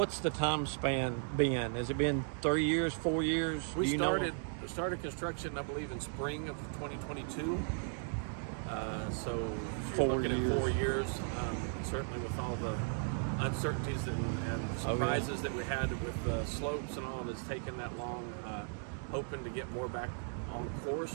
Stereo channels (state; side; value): silent; left; 54 dB below the other